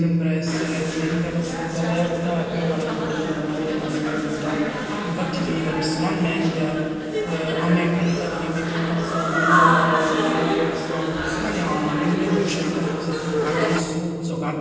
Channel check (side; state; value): both; identical; correlation 1.00